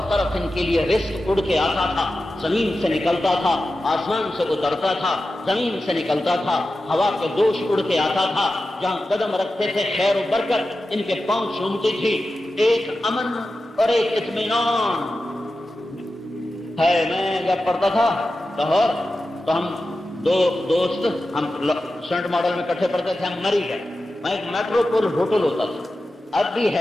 طرف ان کے لیے رزق اڑ کے آتا تھا، زمین سے نکلتا تھا، آسمان سے اترتا تھا، زمین سے نکلتا تھا، ہوا کے دوش اڑ کے آتا تھا، جہاں قدم رکھتے تھے خیر و برکت ان کے پاؤں چومتی تھی، ایک امن اور ایک اطمینان ہے۔ میں جب پڑھتا تھا لاہور تو ہم دو دوست، ہم سینٹ ماڈل میں کٹھے پڑھتے تھے، ہم مری گئے، وہاں ایک میٹروپول ہوٹل ہوتا تھا، اب بھی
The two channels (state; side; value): normal; both; correlation 0.93